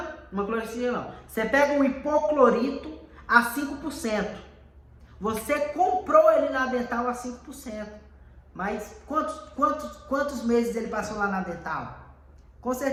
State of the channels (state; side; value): identical; both; correlation 1.00